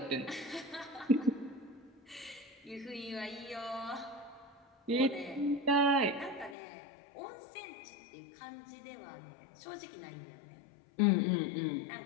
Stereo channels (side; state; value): right; drops out; at 6.6 s